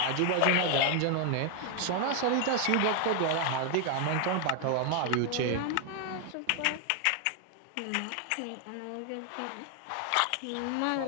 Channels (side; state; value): both; different; correlation 0.00